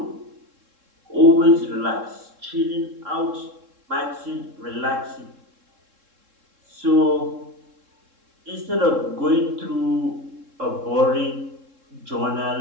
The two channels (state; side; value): late; left; 3.7 ms